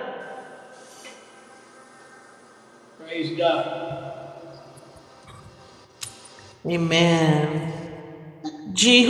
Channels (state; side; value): identical; both; correlation 1.00